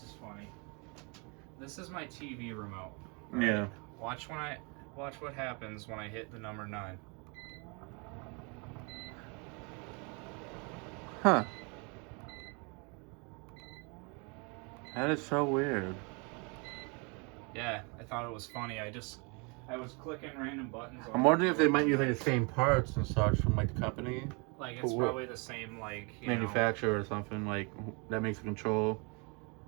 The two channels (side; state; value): left; quieter; 32.2 dB